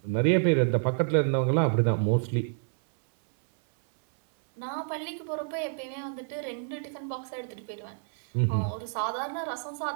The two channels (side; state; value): left; silent; 59 dB below the other